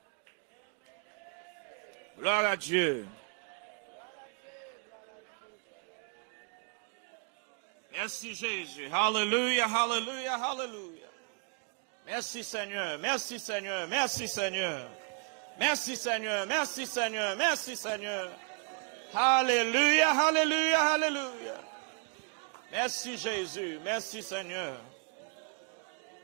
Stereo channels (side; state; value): left; quieter; 37.4 dB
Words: Gloire à Dieu. Merci Jésus. Hallelujah, hallelujah, hallelujah. Merci Seigneur, merci Seigneur, merci Seigneur. Merci Seigneur, merci Seigneur, merci Seigneur. Alléluia, alléluia, alléluia. Merci Jésus, merci Seigneur.